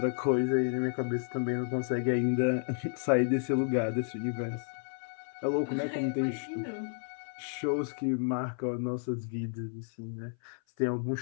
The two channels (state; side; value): silent; right; 57 dB below the other